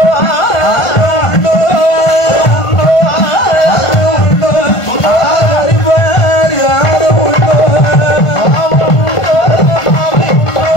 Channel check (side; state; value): right; late; 1.5 ms